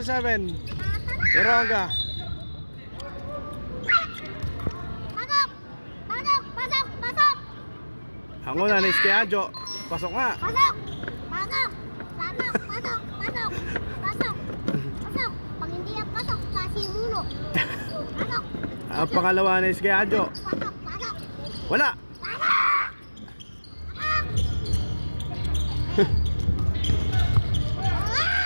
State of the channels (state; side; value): inverted; both; correlation -1.00